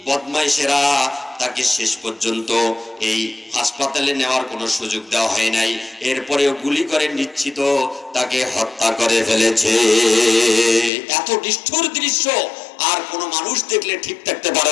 বদমাইশেরা, তাকে শেষ পর্যন্ত এই হাসপাতালে নেওয়ার কোনো সুযোগ দেওয়া হয় নাই। এরপরেও গুলি করে নিশ্চিত তাকে হত্যা করে ফেলেছে। এত নিষ্ঠুর দৃশ্য আর কোনো মানুষ দেখলে ঠিক থাকতে পারে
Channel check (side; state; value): right; drops out; at 10.9 s